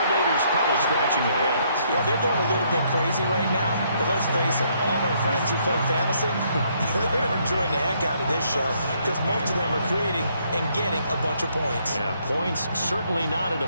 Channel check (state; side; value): inverted; both; correlation -0.70